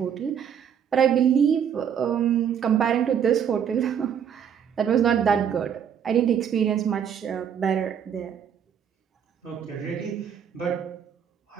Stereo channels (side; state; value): left; quieter; 8.3 dB